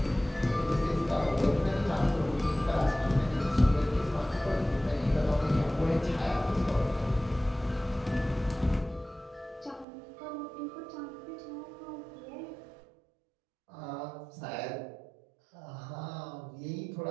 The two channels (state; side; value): drops out; left; at 9.9 s